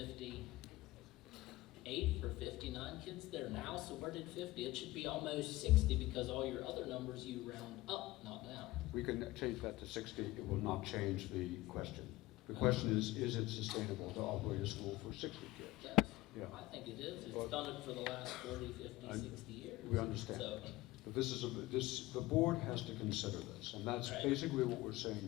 or 59 kids there now, so where did 50? It should be almost 60 because all your other numbers you round up, not down. we can change that to 60. It will not change the question. The question is it sustainable to operate a school for 60 kids? Yes, Yeah. I think it is. It's Well, done it for the last 40, 50, 60 years. We understand. So, But the board has to consider this, and that's Right. basically what we're saying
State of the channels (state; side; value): quieter; right; 18.0 dB